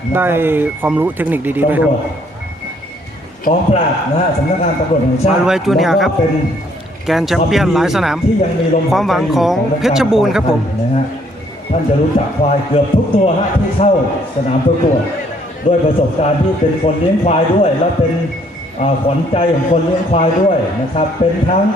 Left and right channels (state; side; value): normal; both; correlation 0.65